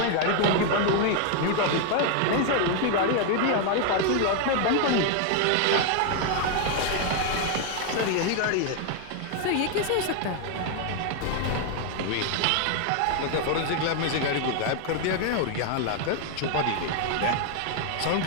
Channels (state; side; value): different; both; correlation 0.01